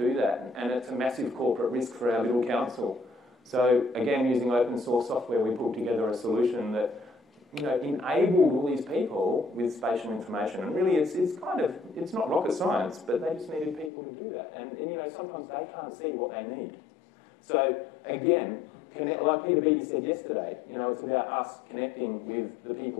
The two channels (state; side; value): drops out; right; at 13.9 s